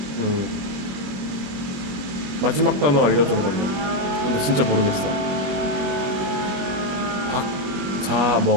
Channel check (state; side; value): late; left; 21 ms